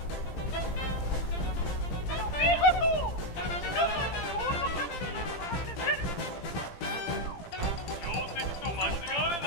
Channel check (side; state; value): right; late; 17 ms